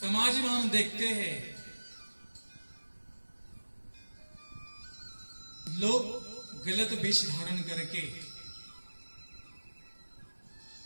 में हम देखते हैं लोग गलत वेश धारण करके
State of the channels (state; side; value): inverted; both; correlation -1.00